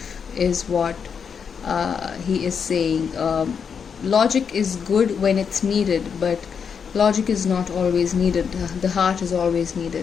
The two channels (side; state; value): right; quieter; 6.6 dB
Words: is what he is saying. Logic is good when it's needed, but logic is not always needed. The heart is always